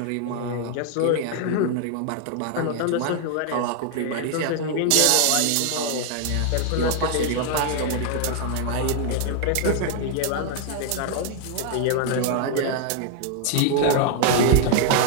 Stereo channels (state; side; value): different; both; correlation 0.00